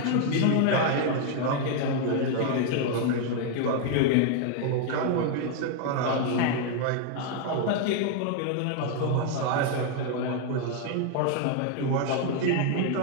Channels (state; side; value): different; both; correlation 0.00